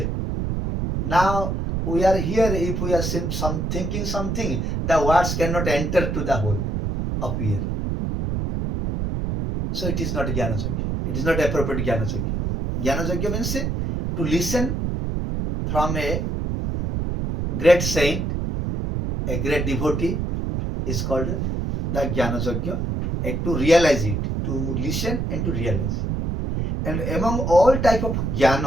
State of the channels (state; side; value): noise; right; rumble, 1 dB below the sound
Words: Now we are here, if we are thinking something, the words cannot enter to the hole of ear. So it is not Jnana Yajna. It is not appropriate Jnana Yajna. Jnana Yajna means to listen from a great saint, a great devotee, is called the Jnana Yajna, and to realize it, to listen and to realize. And among all type of